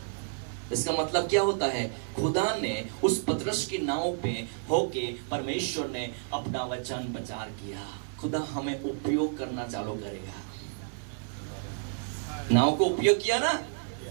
इसका मतलब क्या होता है? खुदा ने उस पतरस की नाव पे होके परमेश्वर ने अपना वचन प्रचार किया। खुदा हमें उपयोग करना चालू करेगा। नाव को उपयोग किया ना।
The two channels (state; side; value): silent; left; digital silence